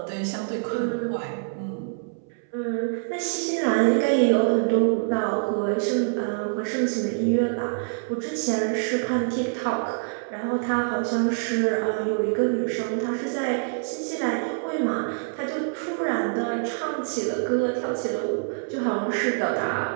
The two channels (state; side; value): silent; left; 61 dB below the other